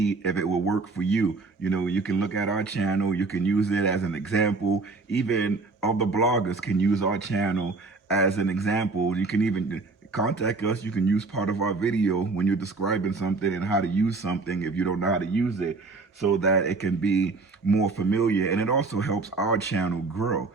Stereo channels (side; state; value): left; quieter; 3.8 dB